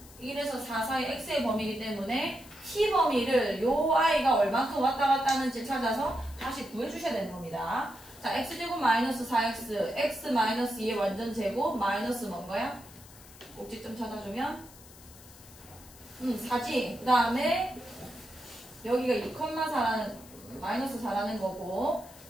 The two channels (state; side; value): noise; left; hiss, 21 dB below the sound